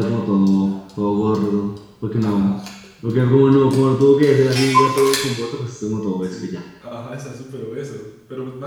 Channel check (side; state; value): both; identical; correlation 1.00